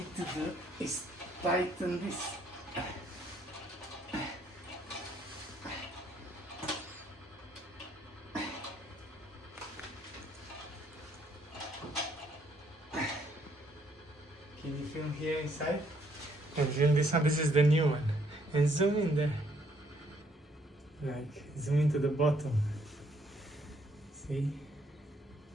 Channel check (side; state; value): both; normal; correlation 0.68